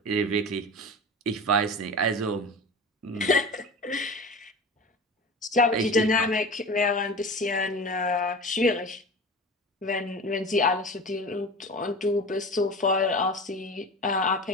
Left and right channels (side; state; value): both; normal; correlation 0.33